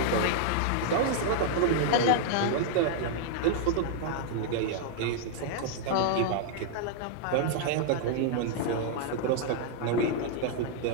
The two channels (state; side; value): different; both; correlation -0.01